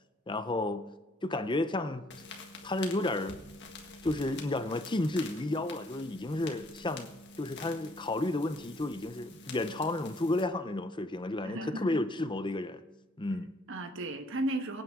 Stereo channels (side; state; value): both; normal; correlation 0.64